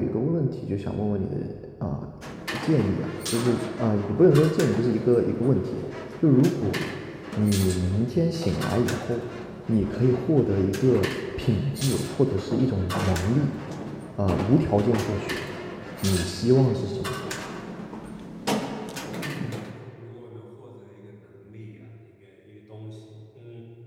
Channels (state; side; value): identical; both; correlation 1.00